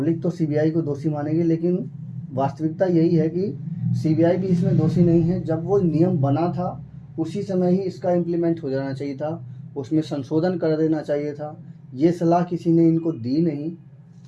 तो सीबीआई को दोषी मानेगी, लेकिन वास्तविकता यही है कि सीबीआई भी इसमें दोषी नहीं है। जब वो नियम बना था उसी समय ही इसका इम्प्लीमेंट हो जाना चाहिए था, उसमें संशोधन कर देना चाहिए था। ये सलाह किसी ने इनको दी नहीं,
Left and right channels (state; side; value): identical; both; correlation 1.00